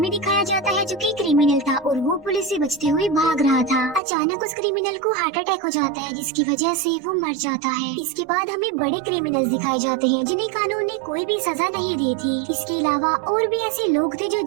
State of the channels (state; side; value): drops out; left; at 4.0 s